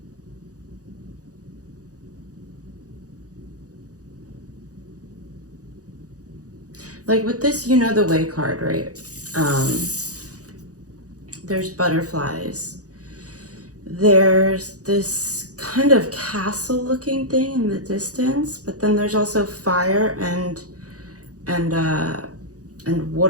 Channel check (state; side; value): late; left; 0.67 ms